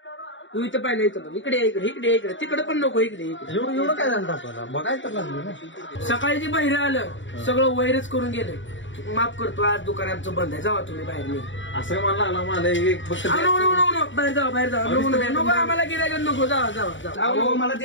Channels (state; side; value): late; right; 0.55 ms